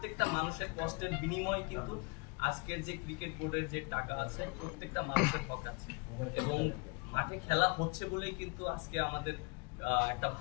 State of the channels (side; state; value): right; quieter; 30.3 dB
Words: মানুষের কষ্টের বিনিময়ে কিন্তু আজকের যে ক্রিকেট বোর্ডের যে টাকা আছে প্রত্যেকটা মানুষের হক আছে, এবং মাঠে খেলা হচ্ছে বলেই কিন্তু আজকে আমাদের একটা